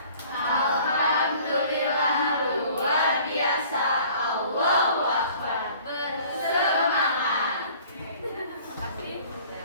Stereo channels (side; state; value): both; inverted; correlation -0.51